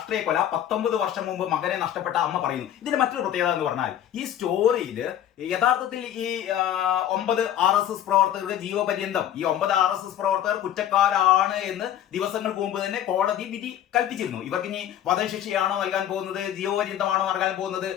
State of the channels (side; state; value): right; quieter; 11.1 dB